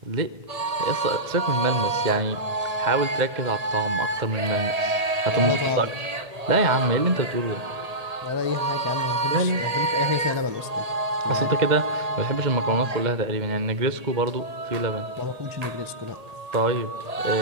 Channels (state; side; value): late; left; 1.8 ms